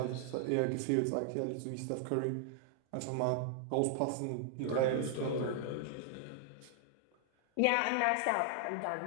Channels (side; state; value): both; different; correlation 0.00